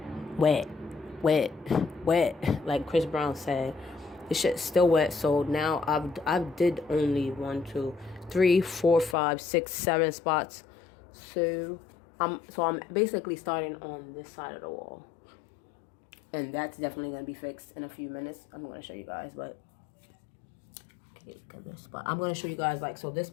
Wet. Like Chris Brown said, this shit's still wet. So now I've did only 1, 2, 3, 4, 5, 6, 7 spots. So I'm basically starting on this side of the wall, and that's definitely gonna be fixed in a few minutes. I'm gonna show you guys, but okay, this spot I'm gonna show you guys, like, so this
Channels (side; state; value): right; drops out; at 9.2 s